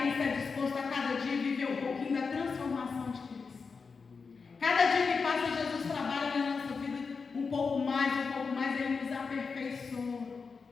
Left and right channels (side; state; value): right; quieter; 5.0 dB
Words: está disposto a cada dia viver um pouquinho da transformação de Cristo. Cada dia que passa, Jesus trabalha na nossa vida um pouco mais, Ele nos aperfeiçoa.